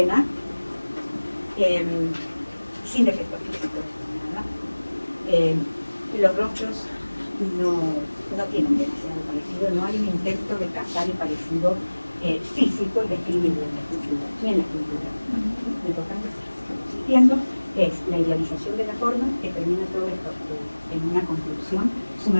sin defectos físicos, nada. Los rostros no tienen demasiado parecido, no hay un intento de captar el parecido físico y describirlo en la escultura, ni en la escultura. Lo importante existiendo es la idealización de la forma que termina todo esto en una conclusión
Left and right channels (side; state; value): both; inverted; correlation -1.00